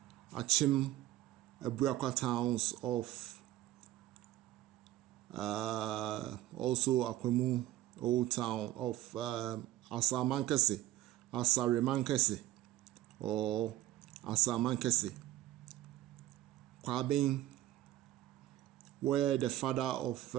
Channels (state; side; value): quieter; left; 14.9 dB